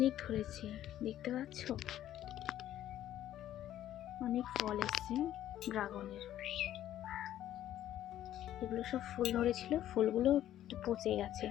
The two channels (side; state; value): right; quieter; 12.3 dB